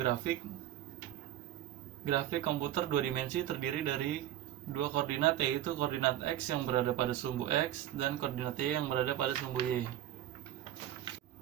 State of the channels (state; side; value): quieter; left; 12.7 dB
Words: komputer dua dimensi terdiri dari dua koordinat, yaitu koordinat X yang berada pada sumbu X dan koordinat Y yang berada pada sumbu Y.